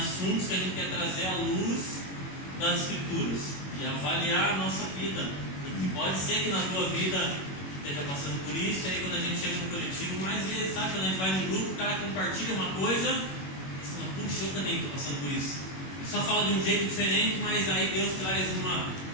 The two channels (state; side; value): late; right; 21 ms